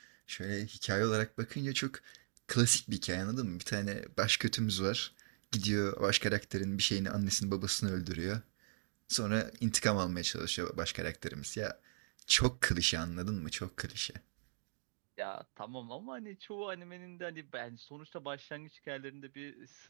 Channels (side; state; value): left; silent; digital silence